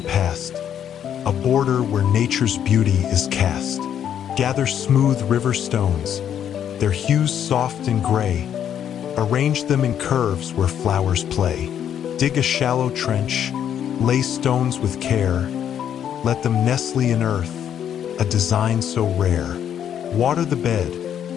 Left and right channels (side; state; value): right; quieter; 9.4 dB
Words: past, a border where nature's beauty is cast. Gather smooth river stones, their hues soft and gray. Arrange them in curves where flowers play. Dig a shallow trench, lay stones with care. Let them nestle in earth, a design so rare. Water the bed,